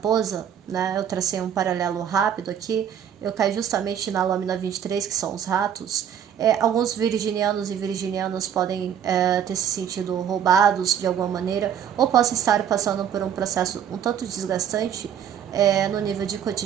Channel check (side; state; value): left; quieter; 9.0 dB